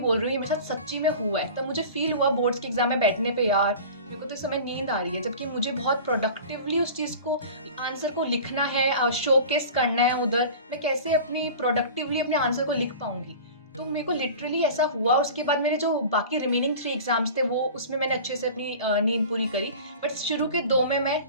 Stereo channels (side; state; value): both; inverted; correlation -0.38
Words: बोल रही हूँ, ये मेरे साथ सच्ची में हुआ है। तब मुझे फील हुआ बोर्ड्स के एग्जाम में बैठने पे, यार मेरे को तो इस समय नींद आ रही है, जबकि मुझे बहुत प्रोडक्टिवली उस चीज़ को, आंसर को लिखना है, शोकेस करना है उधर। मैं कैसे अपनी प्रोडक्टिवली अपने आंसर को लिख पाऊंगी? तो मेरे को लिटरली ऐसा हुआ। उसके बाद मेरे जो बाकी रिमेनिंग 3 एग्जाम्स थे वो, उसमें मैंने अच्छे से अपनी नींद पूरी करी, बट शुरू के 2 में मैं